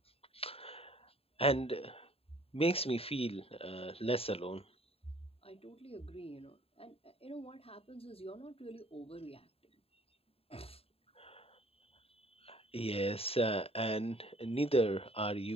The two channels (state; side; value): late; right; 0.28 ms